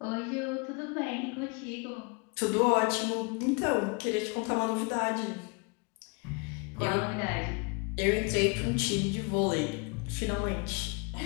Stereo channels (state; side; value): quieter; right; 31.9 dB